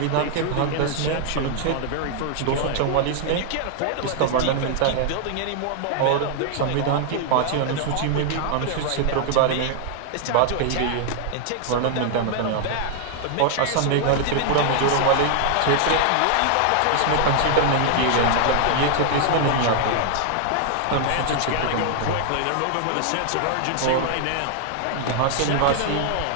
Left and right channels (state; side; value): different; both; correlation 0.00